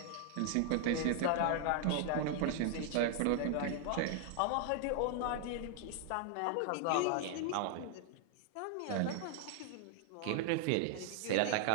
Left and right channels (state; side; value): different; both; correlation 0.00